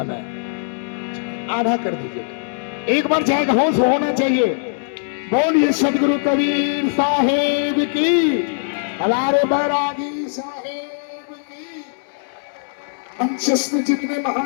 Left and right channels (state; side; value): silent; right; 65 dB below the other